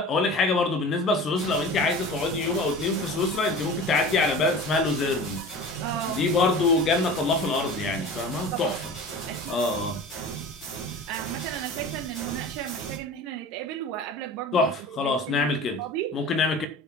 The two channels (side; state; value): both; normal; correlation 0.37